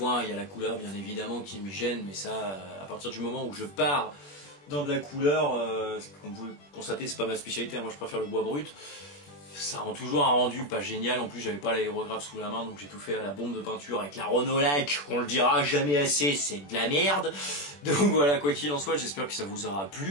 il y a la couleur bien évidemment qui me gêne, mais ça, à partir du moment où je pars dans de la couleur, comme vous le constatez, c'est pas ma spécialité, moi je préfère le bois brut. Ça rend toujours un rendu pas génial, en plus j'avais pas l'aérographe sous la main, donc j'ai tout fait à la bombe de peinture avec la Rhônolac, on le dira jamais assez, c'est de la merde. Donc voilà, quoi qu'il en soit, j'espère que ça vous aura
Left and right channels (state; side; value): late; right; 21 ms